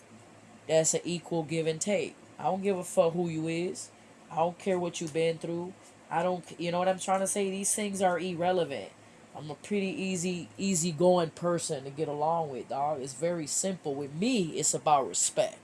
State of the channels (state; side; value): identical; both; correlation 1.00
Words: that's an equal give and take. I don't give a fuck who you is. I don't care what you've been through. I don't, you know what I'm trying to say? These things are irrelevant. I'm a pretty easy going person to get along with, dog. It's very simple. With me, it's about